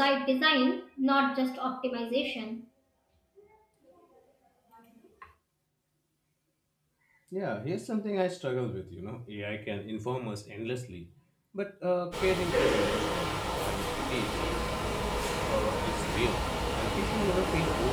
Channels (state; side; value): identical; both; correlation 1.00